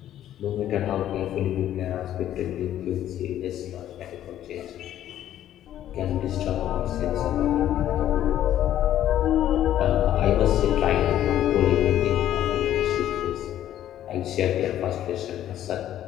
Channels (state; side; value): quieter; right; 11.8 dB